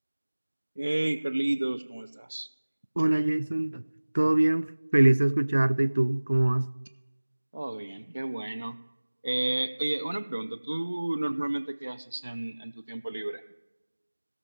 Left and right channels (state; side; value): inverted; both; correlation -1.00